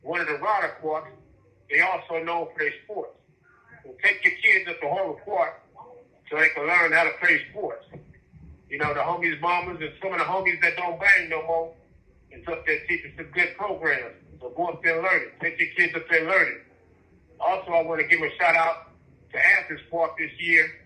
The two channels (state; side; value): identical; both; correlation 1.00